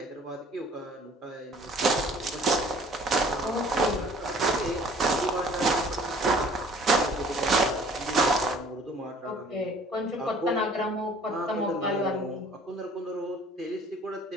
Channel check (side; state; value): both; normal; correlation 0.53